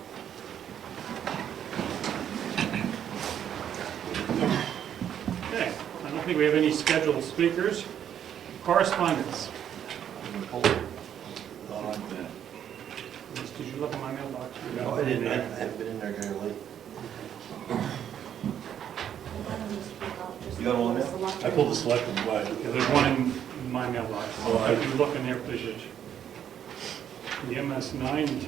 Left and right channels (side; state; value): left; quieter; 9.5 dB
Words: Okay, I don't think we have any scheduled speakers. Correspondence. Did you look at my mailbox? No, I didn't. I haven't been in there very late. You got all of them? I pulled the selectmen, but Yeah, there's one in my mailbox. Oh, If you look in there, please, Rich. The MS 9 and